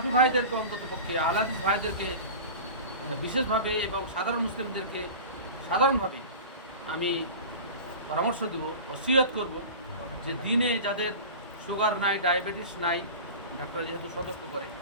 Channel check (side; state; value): both; inverted; correlation -0.34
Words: ভাইদেরকে, অন্ততপক্ষে আহলাদিস ভাইদেরকে বিশেষভাবে এবং সাধারণ মুসলিমদেরকে সাধারণভাবে আমি পরামর্শ দেব, ওসিয়ত করব যে দিনে যাদের সুগার নাই, ডায়াবেটিস নাই, ডাক্তার যেহেতু সতর্ক করে,